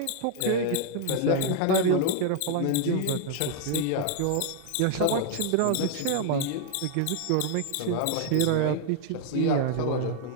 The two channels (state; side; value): different; both; correlation 0.00